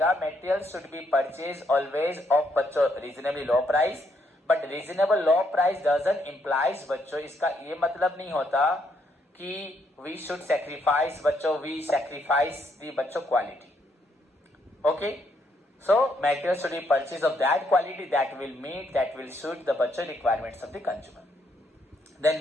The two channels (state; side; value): normal; both; correlation 0.74